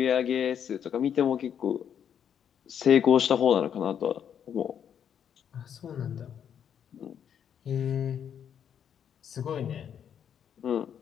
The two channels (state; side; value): quieter; right; 8.6 dB